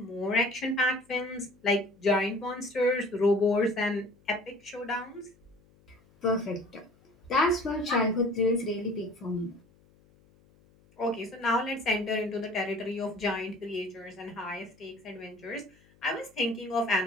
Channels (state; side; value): noise; left; hum, 30 dB below the sound